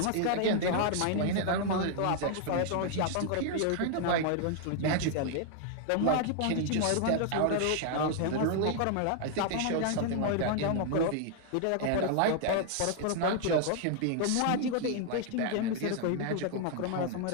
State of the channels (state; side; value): different; both; correlation 0.00